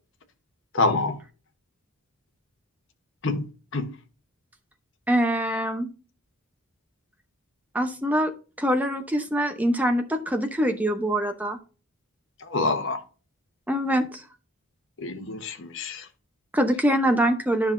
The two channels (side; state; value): both; normal; correlation 0.57